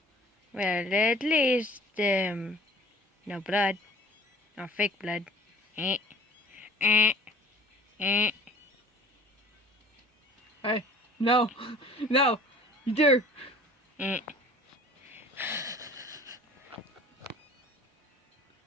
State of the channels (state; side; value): normal; both; correlation 0.48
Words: Well, at least, no blood. No fake blood. Eh. Eh. Eh. Hey, no, no, you dare. Eh.